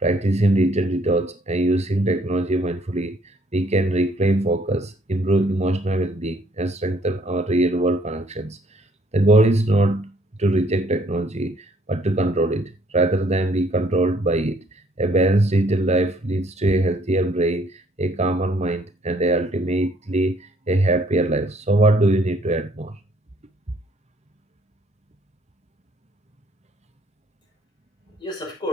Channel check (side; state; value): both; normal; correlation 0.64